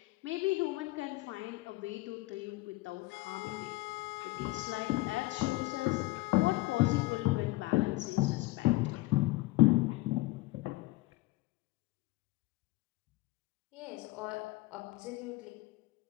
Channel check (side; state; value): right; quieter; 20.1 dB